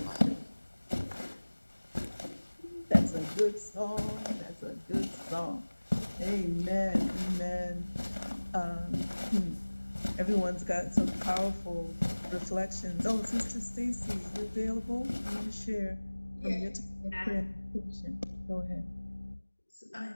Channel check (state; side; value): inverted; both; correlation -1.00